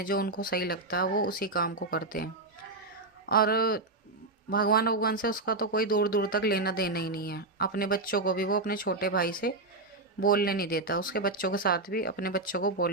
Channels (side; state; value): left; quieter; 3.1 dB